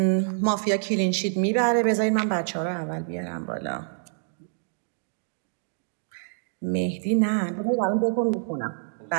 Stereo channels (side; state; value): left; silent; digital silence